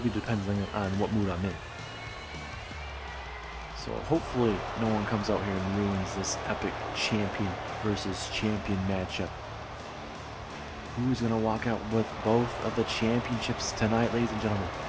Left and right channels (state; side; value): identical; both; correlation 1.00